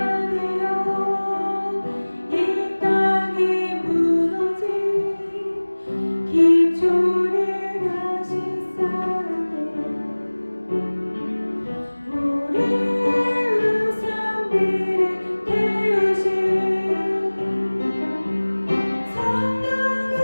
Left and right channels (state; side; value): inverted; both; correlation -1.00